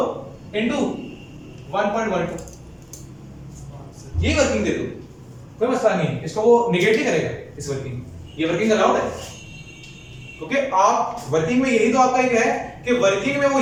into 1.12 ये वर्किंग दे दो, कोई मसला नहीं है। इसको वो निगेट ही करेगा इस वर्किंग, ये वर्किंग अलाउड है, क्योंकि आप वर्किंग में यही तो आपका एक है कि वर्किंग में वो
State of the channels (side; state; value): both; identical; correlation 1.00